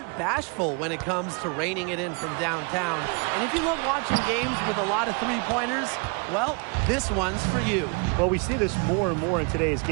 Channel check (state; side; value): quieter; left; 33.8 dB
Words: bashful when it comes to reining it in from downtown. And if you love watching games with a lot of three-pointers, well, this one's for you. Well, we see this more and more in today's